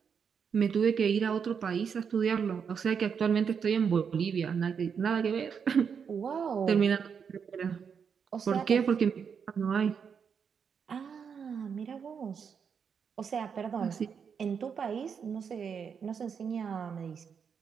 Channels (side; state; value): left; quieter; 6.7 dB